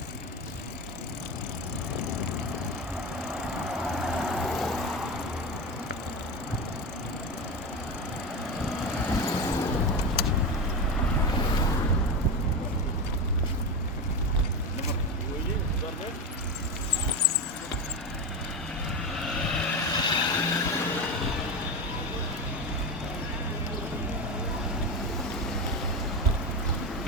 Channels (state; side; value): normal; both; correlation 0.19